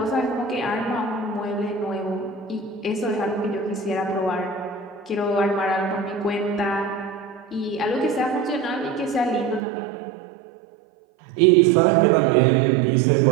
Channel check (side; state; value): left; drops out; at 9.6 s